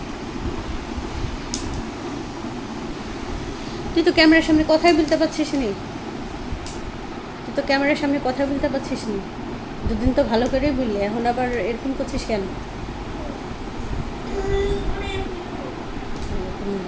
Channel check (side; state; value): both; identical; correlation 1.00